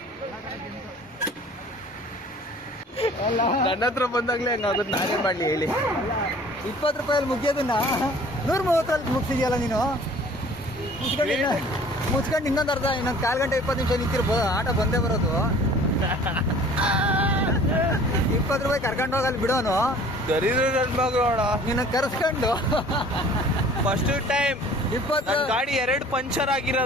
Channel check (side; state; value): both; normal; correlation 0.49